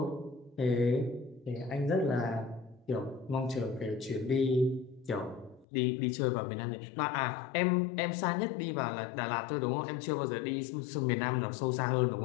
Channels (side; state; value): right; drops out; at 5.7 s